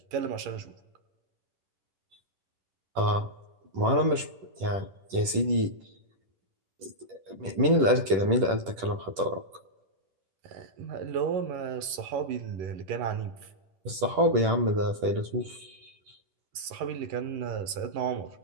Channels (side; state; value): left; late; 10 ms